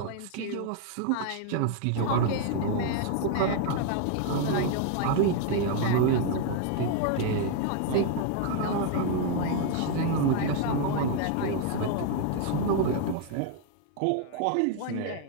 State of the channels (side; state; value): both; different; correlation 0.00